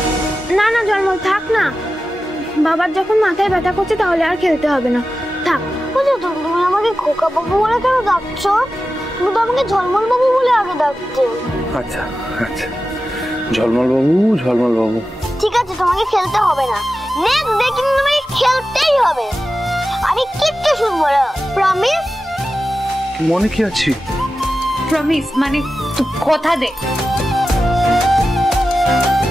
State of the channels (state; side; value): normal; both; correlation 0.93